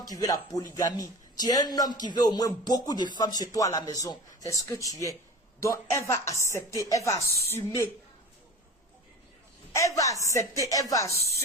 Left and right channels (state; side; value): normal; both; correlation 0.35